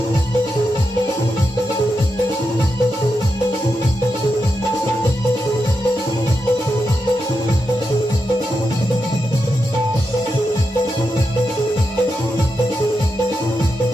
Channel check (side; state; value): both; normal; correlation 0.86